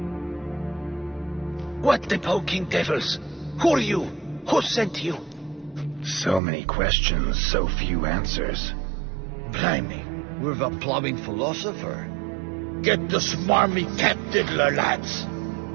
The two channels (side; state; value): left; drops out; at 6.4 s